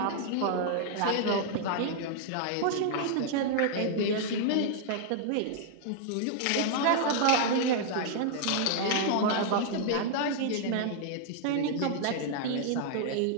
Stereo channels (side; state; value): both; different; correlation -0.01